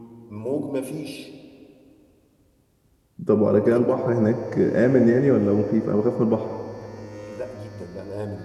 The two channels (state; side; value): identical; both; correlation 1.00